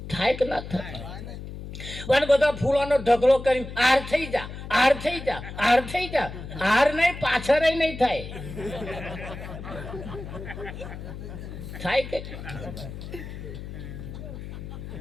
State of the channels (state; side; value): noise; left; hum, 10 dB below the sound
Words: થાય કે ના થાય? અને બધા ફૂલોનો ઢગલો કરી આર થઈ જા, આર થઈ જા, આર થઈ જા. આર નહીં, પાછળ નહીં થાય. થાય કે